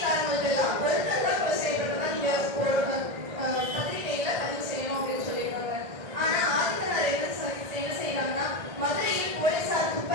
எல்லாம் ஒருத்தர் தான் கொலை செய்யப்பட்டதா நீங்க பத்திரிகையில பதிவு செய்யணும் அப்படின்னு சொல்லிடுவாங்க. ஆனா ஆதித்தனார் என்ன செய்யறாங்கன்னா மதுரையில் போலீசார்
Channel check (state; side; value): late; left; 1.6 ms